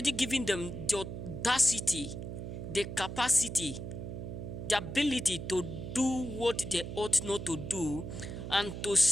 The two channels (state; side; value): noise; right; hum, 7 dB below the sound